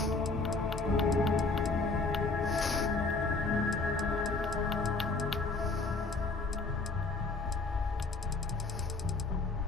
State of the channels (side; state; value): right; quieter; 3.7 dB